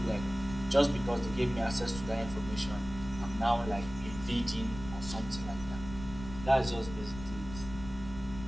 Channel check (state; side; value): noise; left; rumble, 11 dB below the sound